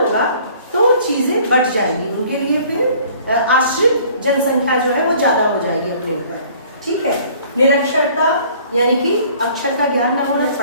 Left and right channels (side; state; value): both; inverted; correlation -0.54